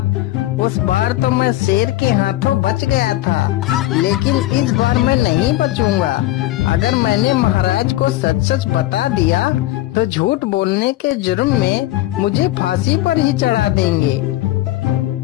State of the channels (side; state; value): right; quieter; 15.8 dB